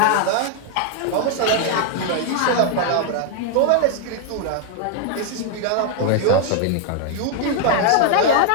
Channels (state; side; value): different; both; correlation 0.00